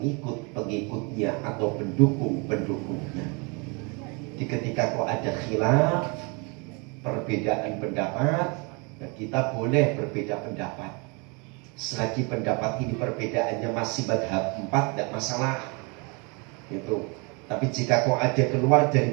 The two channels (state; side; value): quieter; left; 31.3 dB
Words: atau pendukung-pendukungnya. Jadi ketika kok ada khilaf, perbedaan pendapat, kita boleh berbeda pendapat. Selagi pendapat ini perbedaannya masih madhab 4, tidak masalah. Itu. Tapi jika kok ada keluar dari